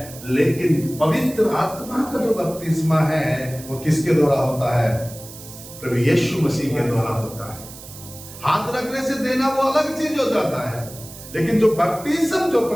लेकिन पवित्र आत्मा का जो बपतिस्मा है वो किसके द्वारा होता है? प्रभु यीशु मसीह के द्वारा होता है। हाथ रखने से देना वो अलग चीज हो जाता है, लेकिन जो बपतिस्मा जो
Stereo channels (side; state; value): right; noise; hiss, 16 dB below the sound